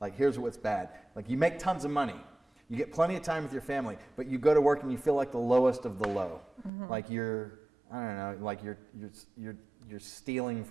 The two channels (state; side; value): drops out; left; at 6.7 s